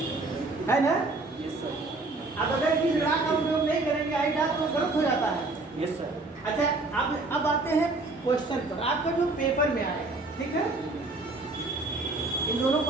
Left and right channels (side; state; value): left; quieter; 3.2 dB